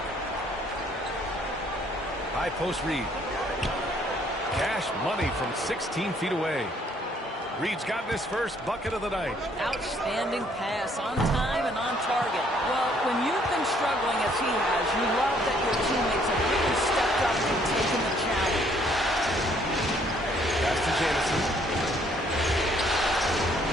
High post Reed. Cash money from 16 feet away. Reed's gotten his first bucket of the night. Outstanding pass, on time and on target. Well, when you've been struggling as he has, you love that your teammates have really stepped up and taken the challenge. Pass to Jamison.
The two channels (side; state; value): both; normal; correlation 0.64